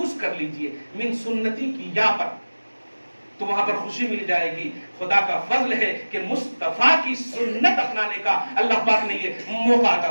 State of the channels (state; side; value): inverted; both; correlation -1.00